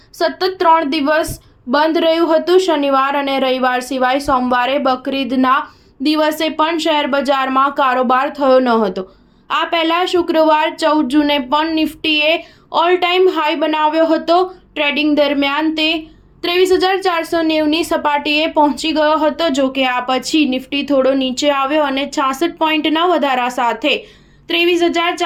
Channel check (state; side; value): identical; both; correlation 1.00